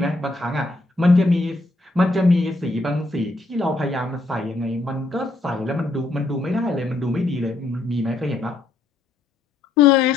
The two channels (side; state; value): right; quieter; 3.0 dB